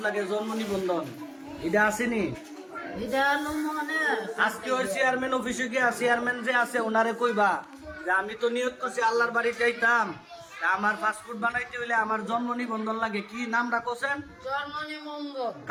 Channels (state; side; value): identical; both; correlation 1.00